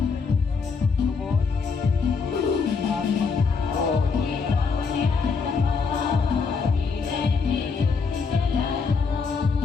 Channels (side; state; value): right; quieter; 5.1 dB